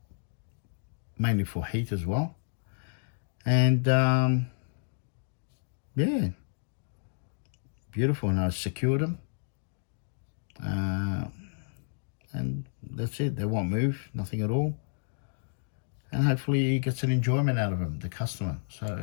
mainly for heat as well. And, yeah, beautiful. And I secured them. And that's it. They won't move, nothing at all. And hopefully he gets an enjoyment out of them, the customer.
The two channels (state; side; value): silent; right; digital silence